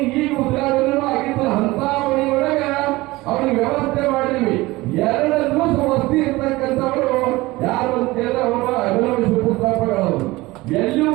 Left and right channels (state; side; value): quieter; left; 20.2 dB